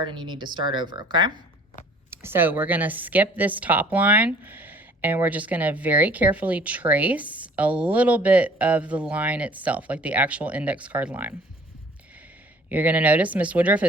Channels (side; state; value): both; normal; correlation 0.53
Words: and you need to start over, okay? So we're gonna skip this top line and we're just gonna very carefully trace a little bit of the line itself, like the actual index card line. You're going to notice Miss Woodruff